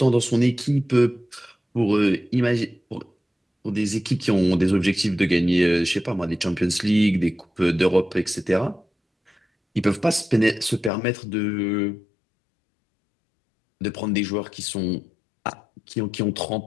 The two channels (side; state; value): right; drops out; at 10.9 s